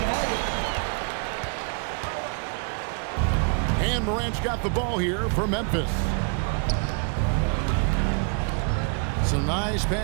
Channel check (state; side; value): quieter; left; 39.5 dB